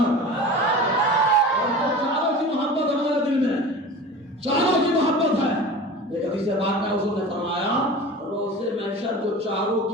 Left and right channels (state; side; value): normal; both; correlation 0.35